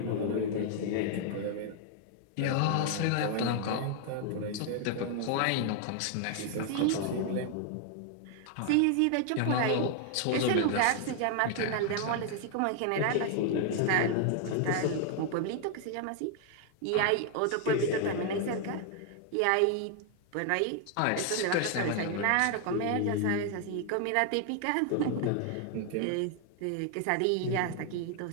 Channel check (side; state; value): both; different; correlation 0.00